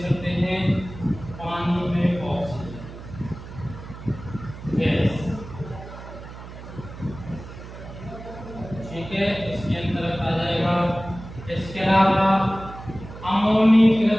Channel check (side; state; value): right; noise; hum, 14 dB below the sound